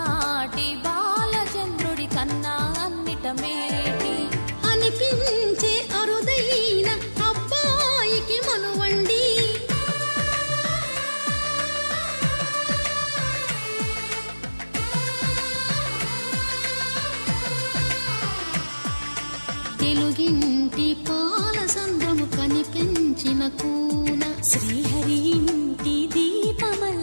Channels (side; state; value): both; inverted; correlation -1.00